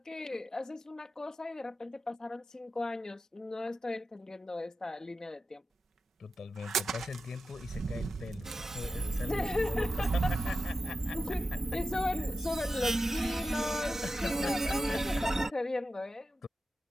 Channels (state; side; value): normal; both; correlation 0.89